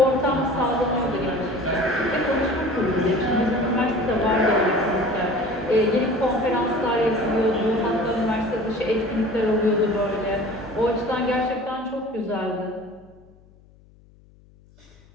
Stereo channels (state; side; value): noise; left; hum, 28 dB below the sound